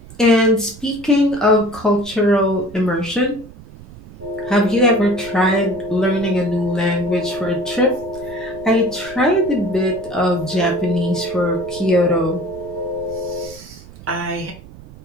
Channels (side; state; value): right; noise; rumble, 19 dB below the sound